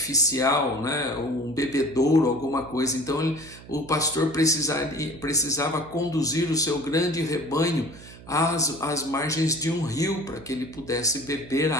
né? Um bebedouro, alguma coisa. Então o pastor precisava conduzir o seu grande rebanho às margens de um rio para que ele pudesse beber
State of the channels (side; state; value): right; noise; hum, 18 dB below the sound